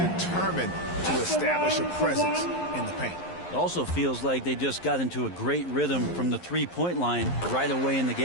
to establish a presence in the paint. It also feels like they just got into a great rhythm from the three-point line right away in the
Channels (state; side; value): late; right; 11 ms